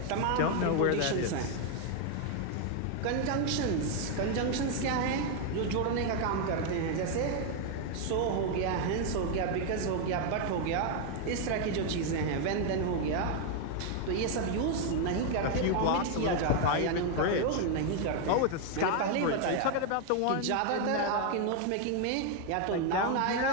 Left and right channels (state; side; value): different; both; correlation 0.01